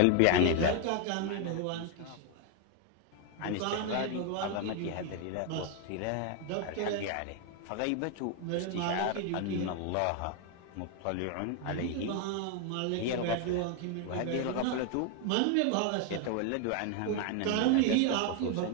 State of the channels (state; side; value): different; both; correlation 0.01